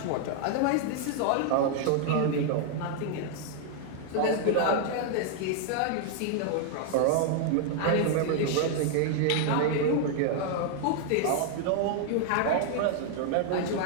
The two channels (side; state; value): both; different; correlation 0.00